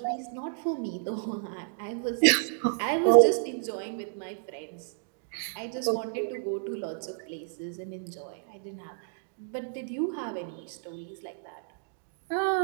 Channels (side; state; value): left; silent; digital silence